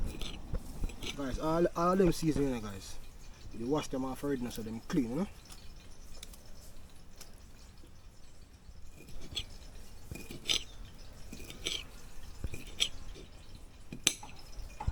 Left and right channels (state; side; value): identical; both; correlation 1.00